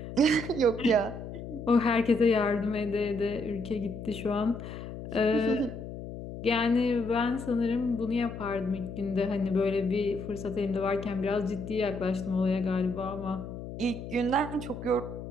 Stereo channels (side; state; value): left; noise; hum, 10 dB below the sound